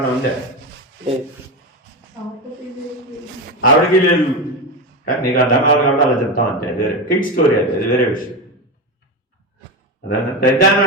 ఉందా? ఆవిడకి లేదు. నీకు అర్థం కావాలి కాబట్టి అలా చెప్తాం అంతే. అది వేరే కిడ్ స్టోరీ. అది వేరే విషయం. అదన్నా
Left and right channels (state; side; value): normal; both; correlation 0.17